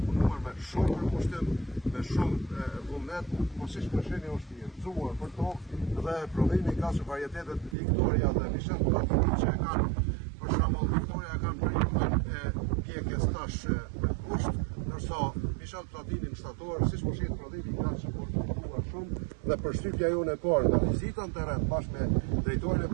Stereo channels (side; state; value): left; drops out; at 7.8 s